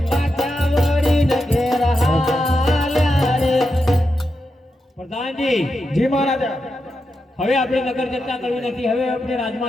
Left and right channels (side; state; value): both; normal; correlation 0.87